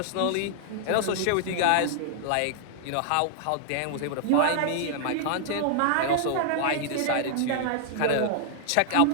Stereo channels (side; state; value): both; different; correlation -0.01